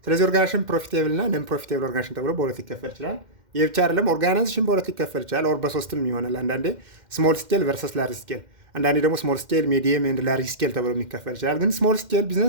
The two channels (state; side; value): late; left; 2.1 ms